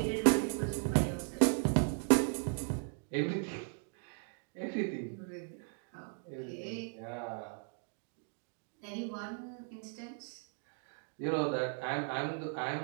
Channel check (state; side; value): silent; left; 53 dB below the other